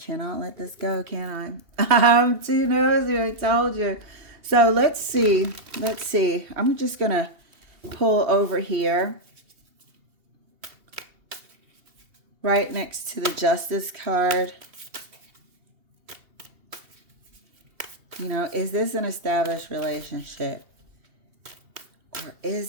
let this go, can I? I'm too nosy, I told you. So let's see. Let's see. I'm just going to pull over here. right next to the Justice card. You know, is this an established relationship? Or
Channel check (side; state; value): left; late; 2.8 ms